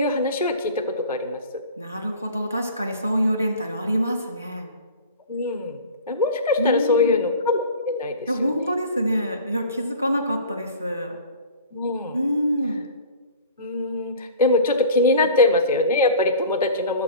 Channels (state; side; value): inverted; both; correlation -0.41